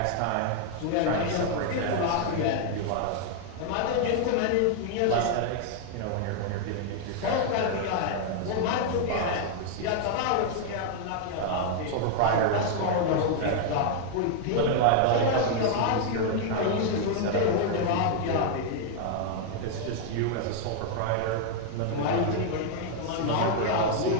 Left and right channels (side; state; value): both; different; correlation 0.00